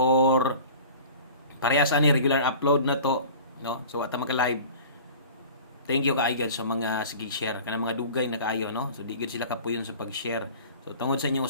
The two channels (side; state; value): both; inverted; correlation -0.41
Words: parehas ani regular upload na to, no? So ata maka-live. Thank you kaayo gyud sa mga sige share kana mga dugay na kaayo, no? So di gyud sila kapuyon sa pag-share. So tungod sa inyong